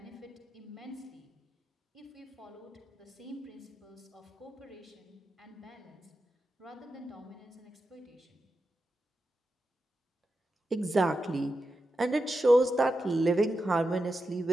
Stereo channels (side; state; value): both; normal; correlation 0.89